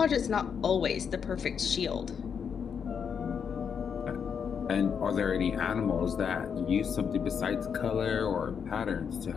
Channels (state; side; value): quieter; right; 7.0 dB